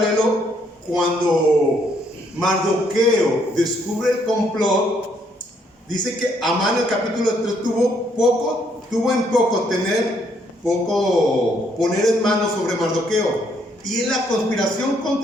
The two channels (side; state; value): both; normal; correlation 0.70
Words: cuando Mardoqueo descubre el complot. Dice que Amán en el capítulo 3 tuvo en poco poner en manos sobre Mardoqueo. Y en la conspiración